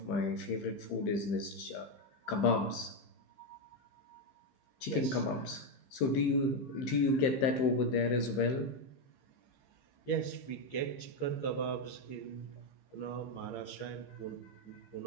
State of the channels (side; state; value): right; late; 15 ms